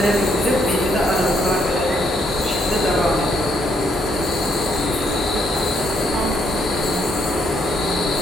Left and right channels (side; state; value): both; normal; correlation 0.72